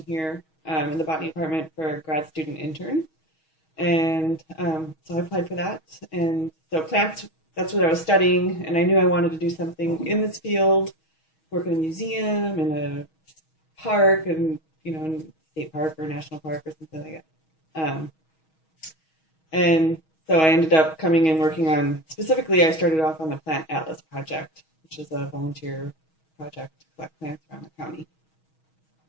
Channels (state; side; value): late; right; 6.3 ms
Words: here in the botany department for a grad student intern. And so I applied for that. And so plants, that's what I was studying, and I knew I wanted to do something in this field, work in a museum, in a park, and, in a state park or a national park or something like that. And so I ended up coming and working on, specifically, I started off on the Plant Atlas Project, which is a volunteer project to collect plants around the county.